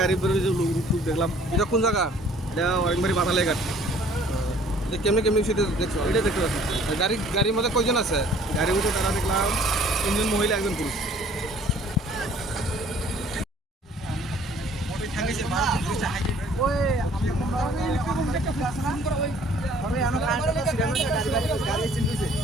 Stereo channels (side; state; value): both; normal; correlation 0.55